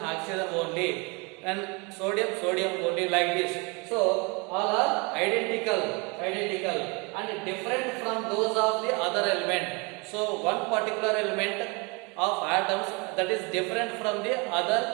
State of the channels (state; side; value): quieter; left; 29.6 dB